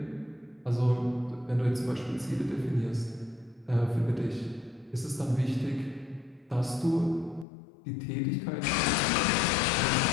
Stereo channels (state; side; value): drops out; right; at 7.5 s